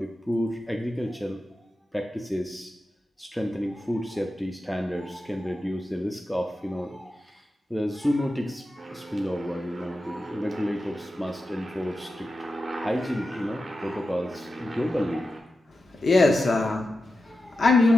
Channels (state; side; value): normal; both; correlation 0.91